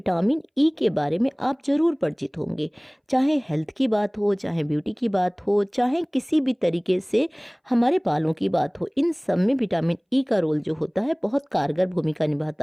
ई के बारे में आप ज़रूर परिचित होंगे। चाहे हेल्थ की बात हो, चाहे ब्यूटी की बात हो, चाहे किसी भी तरीके से हमारे बालों की बात हो, इन सब में विटामिन ई का रोल जो होता है बहुत कारगर भूमिका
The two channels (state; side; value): identical; both; correlation 1.00